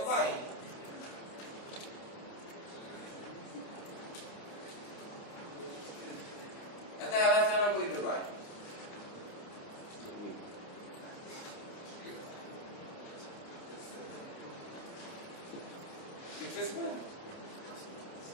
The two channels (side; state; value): right; late; 30 ms